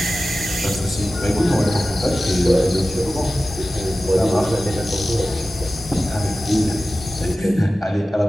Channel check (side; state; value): both; normal; correlation 0.95